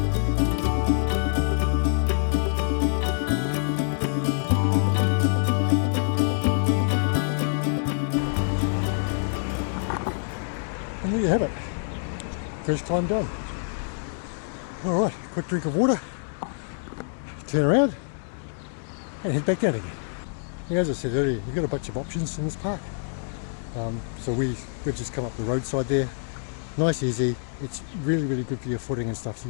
And there you have it. First climb done. Alright, quick drink of water, turn around and head back down again. And as I said earlier, you've got a bunch of options in this park. So we've just come up the roadside there. Nice, easy. It's really, really good for your footing and stuff. So you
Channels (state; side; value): silent; right; digital silence